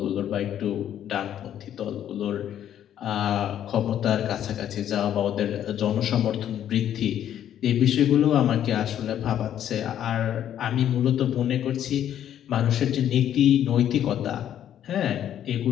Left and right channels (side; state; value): right; quieter; 10.6 dB